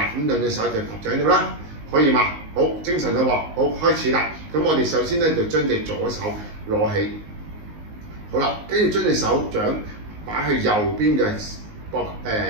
咁兩隻手就搭喺度啦，可以嘛？好，精神啦喎，好，開始啦。咁我哋首先咧就將隻左手攞起，好啦，跟住將隻手掌擺去右邊嘅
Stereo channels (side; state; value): left; late; 19 ms